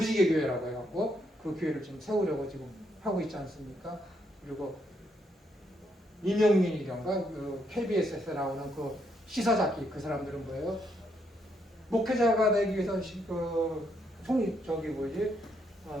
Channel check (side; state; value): both; normal; correlation 0.75